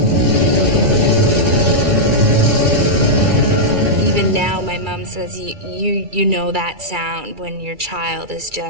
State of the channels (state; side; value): late; left; 2.3 ms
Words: Even now, my mom says, you know that sound when your child is